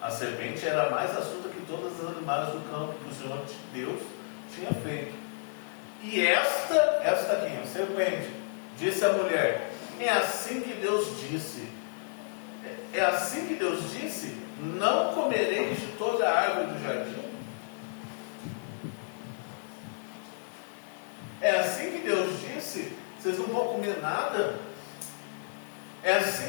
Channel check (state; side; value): silent; right; digital silence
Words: serpente era mais astuta que todas as animais do campo que o Senhor Deus tinha feito. E esta aqui, a serpente, disse à mulher: é assim que Deus disse. É assim que Deus disse: não comereis de toda a árvore do jardim? É assim que Deus disse: vocês não vão comer nada? É